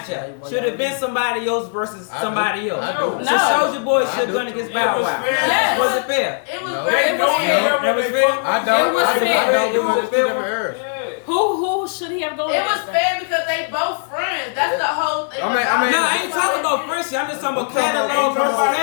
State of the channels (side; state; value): right; silent; 63 dB below the other